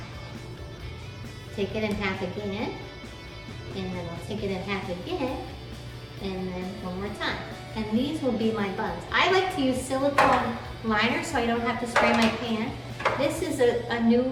take it in half again, and then I'll take it in half again, and then one more time. And these will be my buns. I like to use silicone liners so I don't have to spray my pan. This is a new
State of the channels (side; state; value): both; identical; correlation 1.00